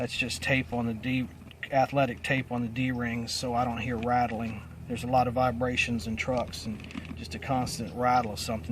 just tape on the athletic tape on the D-rings so I don't hear rattling. There's a lot of vibrations in trucks, and just a constant rattle of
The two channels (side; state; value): both; identical; correlation 1.00